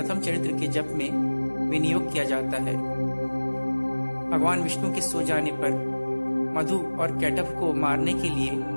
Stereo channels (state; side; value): inverted; both; correlation -1.00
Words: चरित्र के जप में विनियोग किया जाता है। भगवान विष्णु के सो जाने पर मधु और कैटभ को मारने के लिए